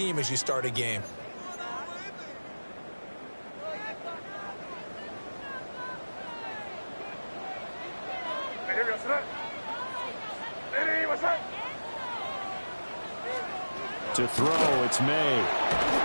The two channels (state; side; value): inverted; both; correlation -1.00